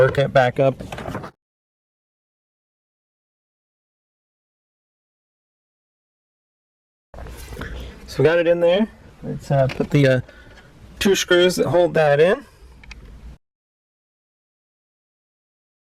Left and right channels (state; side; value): identical; both; correlation 1.00